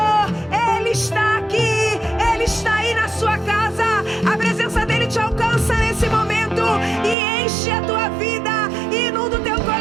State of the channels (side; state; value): left; drops out; at 7.2 s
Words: Ele está aqui, Ele está aí na sua casa. A presença dEle te alcança nesse momento e enche a tua vida, inunda o teu